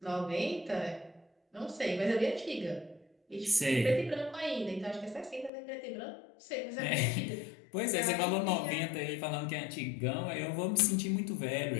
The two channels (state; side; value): drops out; right; at 5.5 s